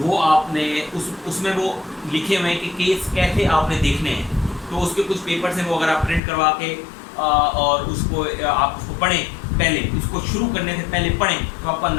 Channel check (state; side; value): drops out; right; at 6.2 s